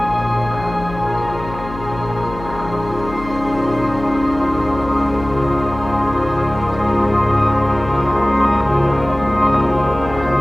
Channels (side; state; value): left; noise; hum, 12 dB below the sound